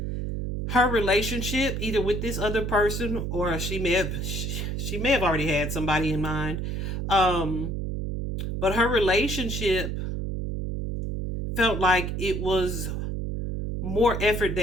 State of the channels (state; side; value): noise; right; hum, 3 dB below the sound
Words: her relationship, either with this other person, or she may have already had somebody in mind. But her relationship felt like it was more effort